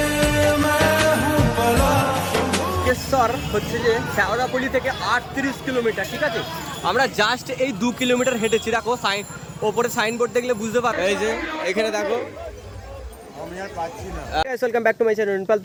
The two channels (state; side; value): identical; both; correlation 1.00